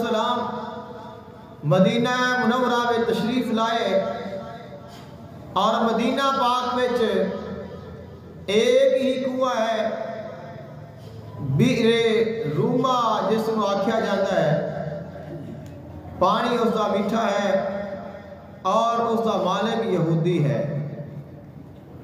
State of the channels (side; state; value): both; identical; correlation 1.00